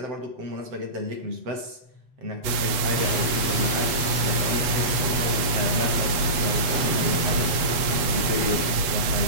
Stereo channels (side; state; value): left; late; 8.1 ms